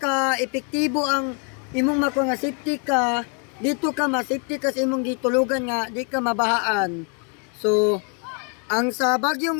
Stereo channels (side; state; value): right; quieter; 38.6 dB